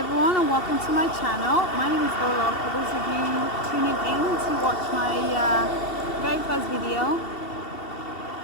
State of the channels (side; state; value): right; late; 2.7 ms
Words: and welcome to my channel. My name is Ola. For those of you tuning in to watch my very first video,